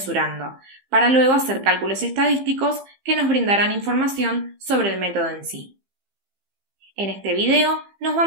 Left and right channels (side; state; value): left; late; 15 ms